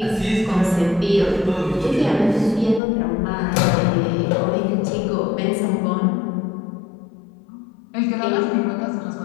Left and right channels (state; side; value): drops out; right; at 2.8 s